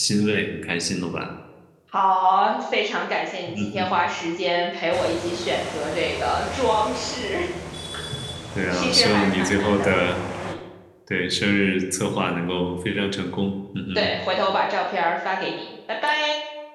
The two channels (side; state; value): both; identical; correlation 1.00